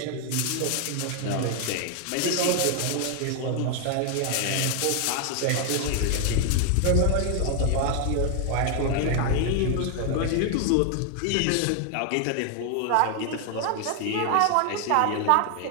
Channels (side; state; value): both; different; correlation 0.00